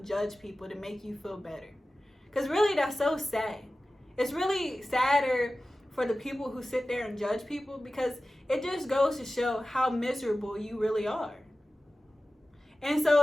judge people to make you feel better. Because really, that's so sad. It's really sadder for the people who sit there and judge people, because it just goes to show how miserable you really are. And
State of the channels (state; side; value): normal; both; correlation 0.95